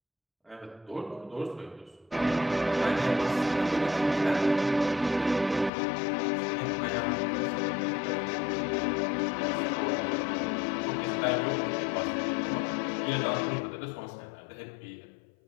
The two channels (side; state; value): right; drops out; at 5.7 s